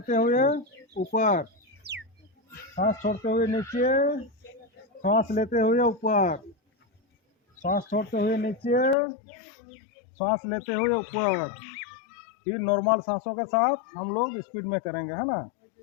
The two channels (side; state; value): right; drops out; at 9.0 s